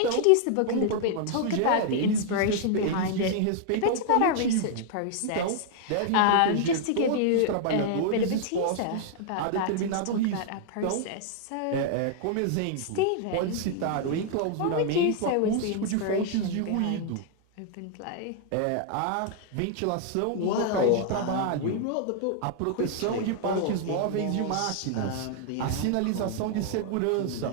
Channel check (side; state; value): both; different; correlation 0.00